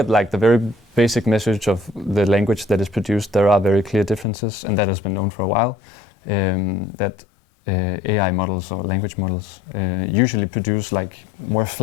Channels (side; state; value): right; drops out; at 4.2 s